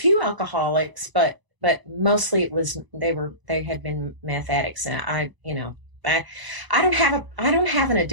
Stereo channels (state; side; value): late; left; 1.0 ms